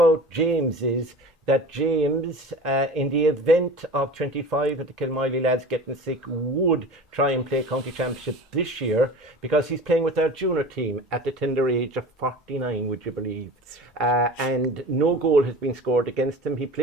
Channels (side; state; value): both; normal; correlation 0.37